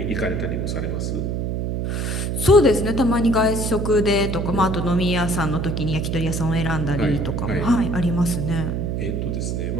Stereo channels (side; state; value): right; noise; hum, 1 dB below the sound